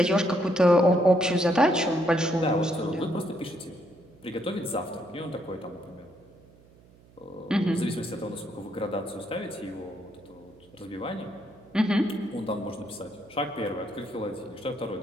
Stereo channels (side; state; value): right; noise; hum, 26 dB below the sound